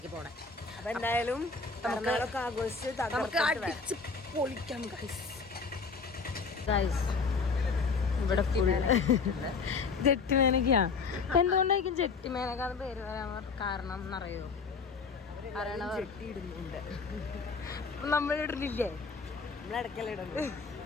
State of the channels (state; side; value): quieter; right; 4.8 dB